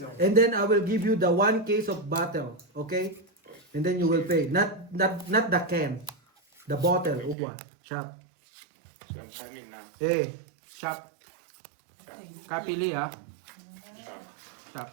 And then I will give you the 1 case of bottle, okay? And then you will pay. Not the can. The bottle uwa. Shop. Eh, Shop. Kapili, ha? Shop.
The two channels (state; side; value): drops out; left; at 7.4 s